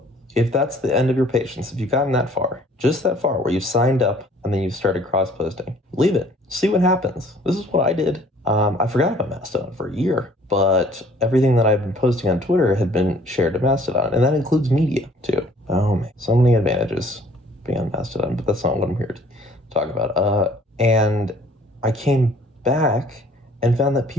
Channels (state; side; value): normal; both; correlation 0.56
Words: that's the end of your patience, if you've gotten that far, just that far where you've signed up and then you've started cross-posting, leave it. See what happens. This is what I did. I forgot about Mastodon for a year, but everything that I've been posting on Twitter had been shared to Mastodon, and that includes media too. Oh man, so many advantages being on Mastodon, but that's not what I'm here to talk about. And I came back and found that